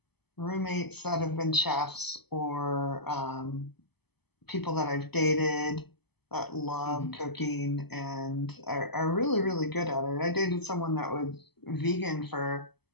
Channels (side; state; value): right; late; 0.98 ms